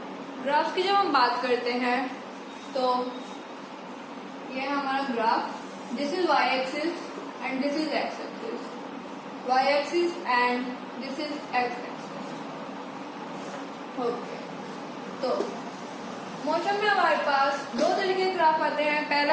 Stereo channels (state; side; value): identical; both; correlation 1.00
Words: ग्राफ्स की जब हम बात करते हैं तो ये हमारा graph, this is Y axis and this is X axis, Y axis and this is X axis. Okay, तो मोशन में हमारे पास दो तरीके के ग्राफ आते हैं। पहला